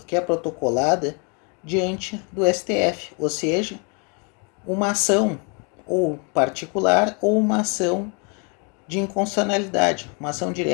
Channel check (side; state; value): right; quieter; 35.3 dB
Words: protocolada diante do STF, ou seja, uma ação ou particular ou uma ação de inconstitucionalidade, uma ação